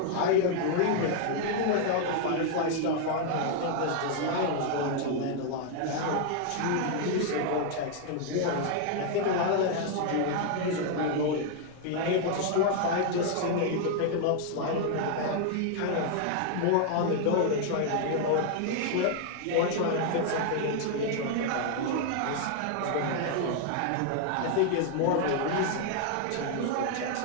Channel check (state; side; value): different; both; correlation 0.00